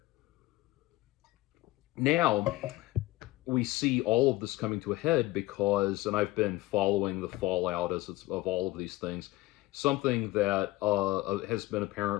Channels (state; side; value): quieter; right; 18.8 dB